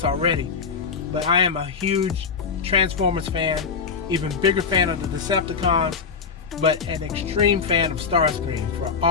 already, but I am a huge Transformers fan, even bigger fan of the Decepticons, but an extreme fan of Starscream for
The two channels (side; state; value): right; quieter; 5.6 dB